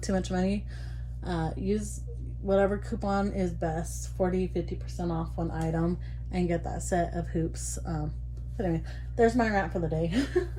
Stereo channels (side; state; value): both; identical; correlation 1.00